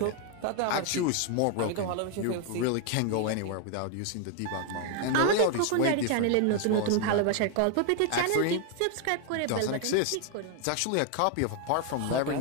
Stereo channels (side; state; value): both; different; correlation 0.00